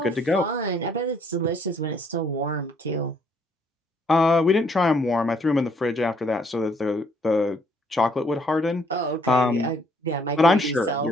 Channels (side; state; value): both; normal; correlation 0.66